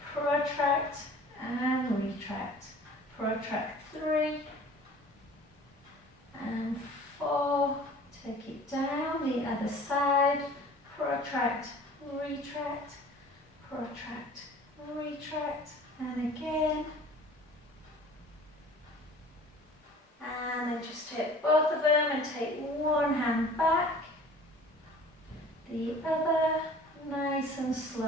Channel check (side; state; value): both; normal; correlation 0.46